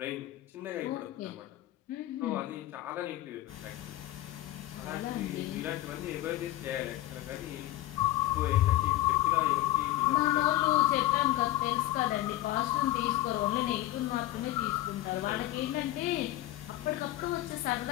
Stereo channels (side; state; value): right; quieter; 15.6 dB